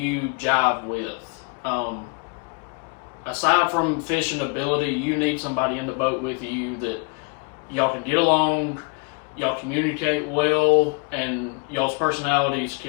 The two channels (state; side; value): quieter; right; 34.8 dB